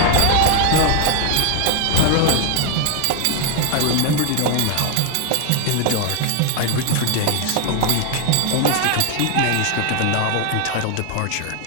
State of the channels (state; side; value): different; both; correlation 0.00